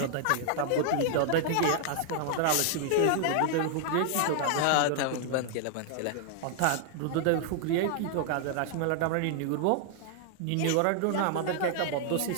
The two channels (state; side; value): different; both; correlation 0.00